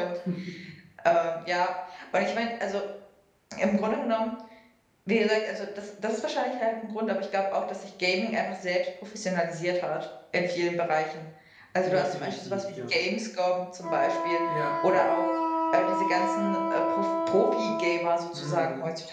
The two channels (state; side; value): identical; both; correlation 1.00